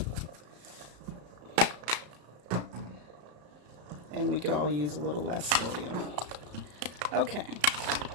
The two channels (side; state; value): left; late; 34 ms